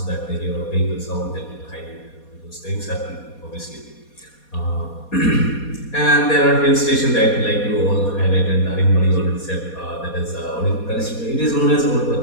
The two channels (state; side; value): late; right; 4.2 ms